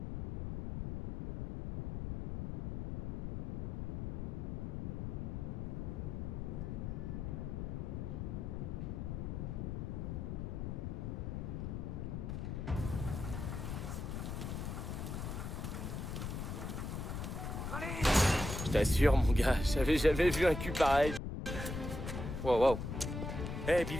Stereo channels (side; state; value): left; noise; rumble, 4 dB below the sound